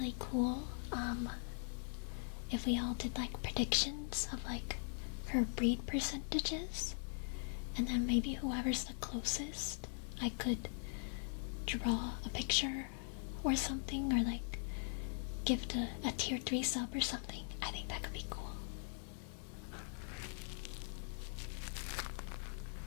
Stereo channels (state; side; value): silent; right; 50 dB below the other